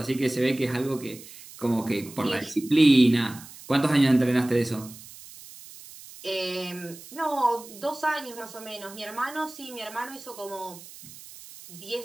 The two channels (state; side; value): noise; right; hiss, 17 dB below the sound